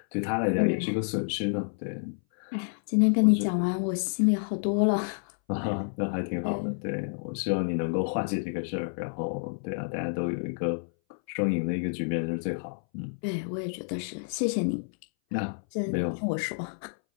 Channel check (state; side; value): silent; right; 59 dB below the other